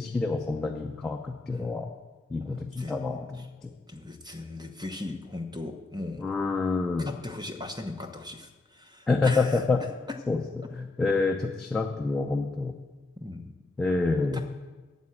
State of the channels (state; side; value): quieter; right; 3.2 dB